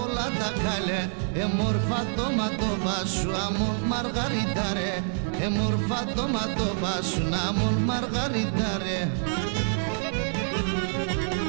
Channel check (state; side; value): silent; left; digital silence